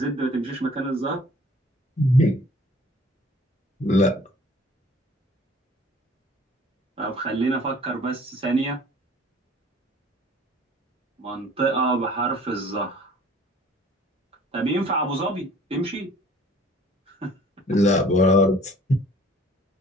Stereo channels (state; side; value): normal; both; correlation 0.51